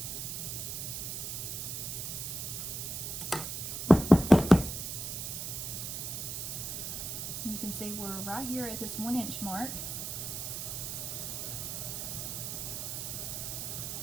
You can see we're right here at this 1-inch mark.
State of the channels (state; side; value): noise; right; hiss, 4 dB below the sound